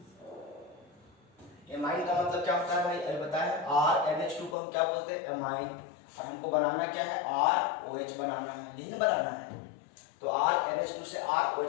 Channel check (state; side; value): drops out; right; at 4.5 s